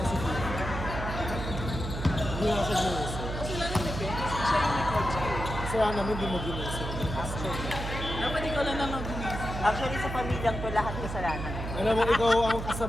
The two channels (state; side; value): noise; right; hum, 6 dB below the sound